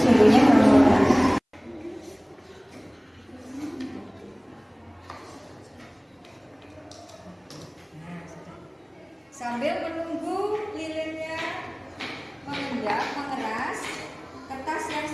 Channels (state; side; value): identical; both; correlation 1.00